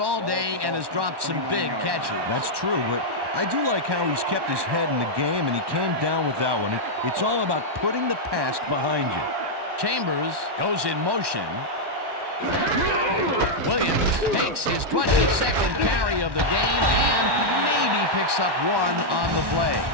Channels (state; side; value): late; left; 1.1 ms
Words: day and has dropped some big catches. That's true, but I do like how he's kept his head in the game, and he came down with that one. It's all about putting the past behind you. Chambers goes in motion. Williams takes his 22nd carry of the game and maybe picks up 1 on the play.